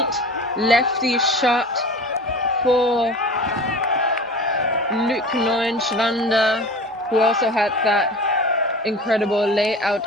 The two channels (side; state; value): both; normal; correlation 0.36